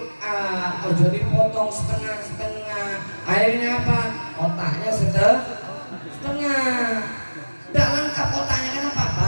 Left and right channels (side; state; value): both; inverted; correlation -1.00